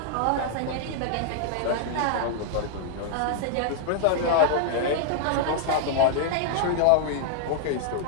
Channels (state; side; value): different; both; correlation -0.01